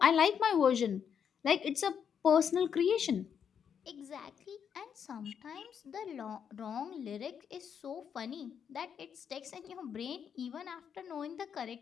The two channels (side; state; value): right; quieter; 7.7 dB